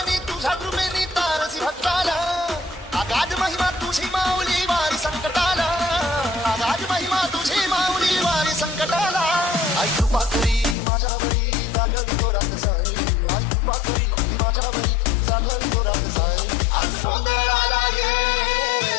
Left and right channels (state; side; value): drops out; right; at 10.8 s